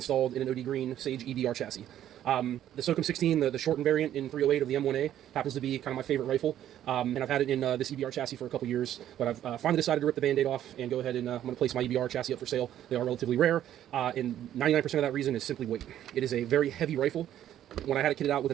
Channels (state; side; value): quieter; left; 11.5 dB